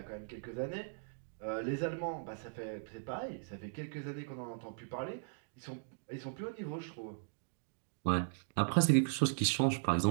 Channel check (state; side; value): silent; left; digital silence